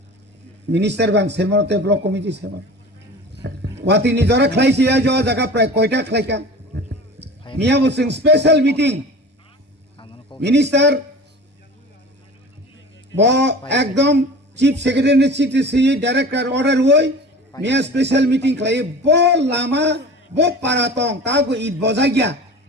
মিনিস্টার বান সেমতে ব্লক কমিটি সেমন ওয়াতি নিজরা খাইছি আ জ জায়গা প্রায় কয়টা খাইকা মিয়া বসিং স্পেশাল মিটিং মিনিস্টার ব একদম chief secretary CTC director order হই মিয়া স্পেশাল মিটিং খাই ব Lama bo paratong tago id bozagya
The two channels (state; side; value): normal; both; correlation 0.37